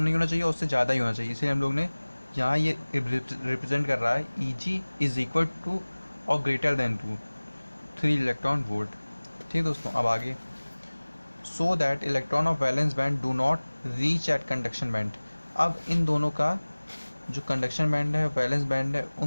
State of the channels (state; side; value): inverted; both; correlation -1.00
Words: नहीं होना चाहिए, उससे ज़्यादा ही होना चाहिए। इसलिए हम लोग ने यहाँ ये रिप्रेजेंट कर रहा है Eg इज इक्वल टू और ग्रेटर देन 3 इलेक्ट्रॉन वोल्ट। ठीक है दोस्तों, अब आगे, so that electron of valence band do not reach at conduction band. अब इन दोनों का जो कंडक्शन बैंड है, वैलेंस बैंड है,